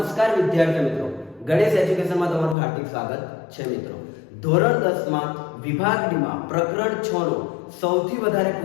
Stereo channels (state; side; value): drops out; right; at 2.6 s